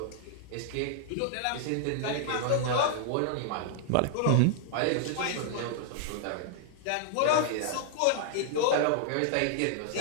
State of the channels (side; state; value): both; different; correlation 0.00